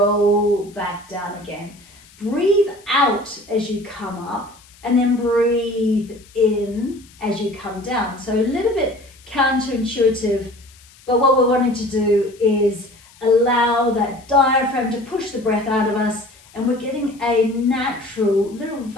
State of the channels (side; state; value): left; noise; hiss, 26 dB below the sound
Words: back down again. Breathe out as you come up and then breathe in as you come down. So a little bit counterintuitive, but what we're wanting to do is allow that diaphragm to push the breath out of us, and we're getting a natural little